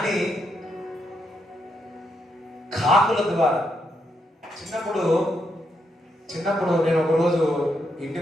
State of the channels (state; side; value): normal; both; correlation 0.79